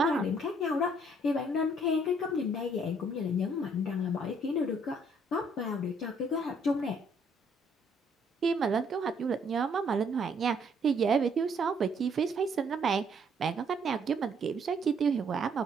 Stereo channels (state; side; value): normal; both; correlation 0.66